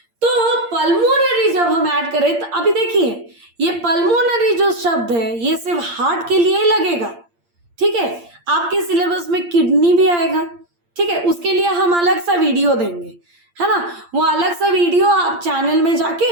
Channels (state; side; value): late; left; 8.7 ms